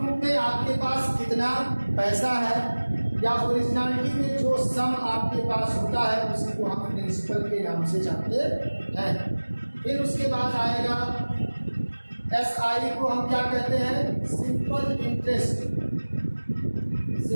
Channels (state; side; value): inverted; both; correlation -1.00